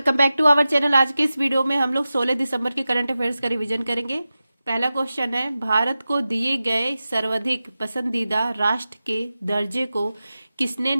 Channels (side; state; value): both; inverted; correlation -0.94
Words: back to our channel. आज के इस वीडियो में हम लोग 16 दिसंबर के करंट अफेयर्स का रिवीजन करेंगे। पहला क्वेश्चन है, भारत को दिए गए सर्वाधिक पसंदीदा राष्ट्र के दर्जे को किसने